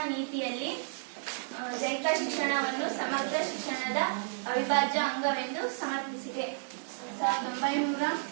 ನೀತಿಯಲ್ಲಿ ದೈಹಿಕ ಶಿಕ್ಷಣವನ್ನು ಸಮಗ್ರ ಶಿಕ್ಷಣದ ಅವಿಭಾಜ್ಯ ಅಂಗವೆಂದು ಸಮರ್ಥಿಸಿದೆ.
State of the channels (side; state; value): left; silent; 57 dB below the other